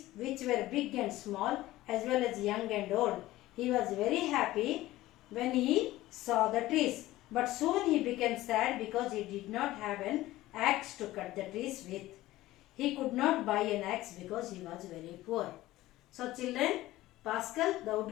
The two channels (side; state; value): right; quieter; 16.6 dB